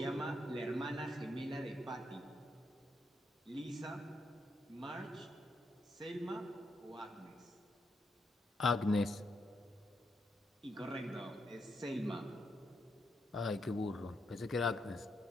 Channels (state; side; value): normal; both; correlation 0.80